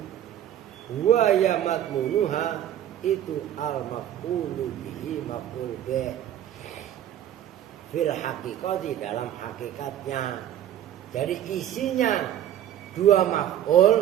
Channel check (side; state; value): left; quieter; 11.4 dB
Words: wa ya madmunuha itu al maf'ulu bihi maf'ul bi fil haqiqati, dalam hakikatnya. Jadi isinya dua